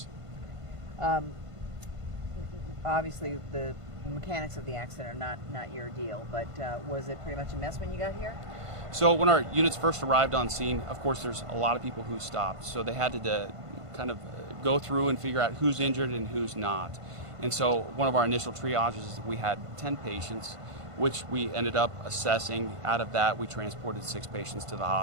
Obviously, the mechanics of the accident are not your deal, but was it pretty much a mess when you got here? So when our units first arrived on scene, of course, there's a lot of people who stopped. So they had to kind of go through and figure out who's injured and who's not. And so one of our initial triages, we had 10 patients, which we ended up assessing. Out of that, we transported 6 patients to the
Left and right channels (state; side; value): late; left; 1.5 ms